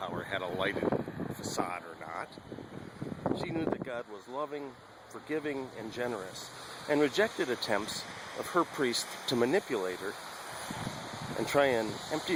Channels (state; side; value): identical; both; correlation 1.00